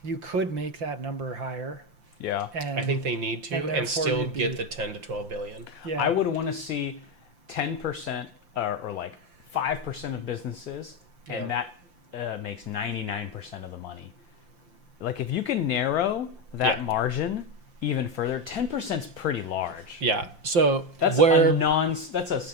you could make that number higher. Yeah. And I think they need to, and still get the 10 to 12 billion. Yeah. I would want to see 10% or like 5% of businesses, and that makes 99% of the money. Like, if you can narrow that margin even further, 10% is pretty large. Yeah. So that's that's a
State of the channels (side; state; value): left; late; 5.8 ms